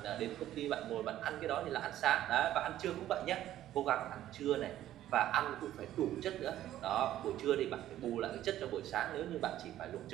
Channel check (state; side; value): quieter; left; 12.9 dB